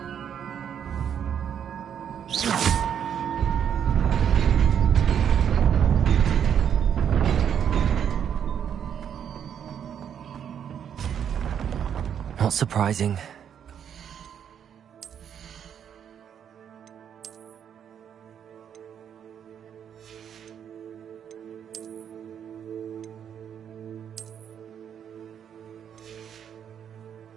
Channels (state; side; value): quieter; left; 8.6 dB